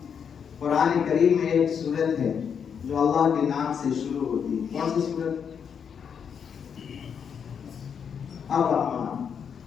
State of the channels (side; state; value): right; quieter; 7.2 dB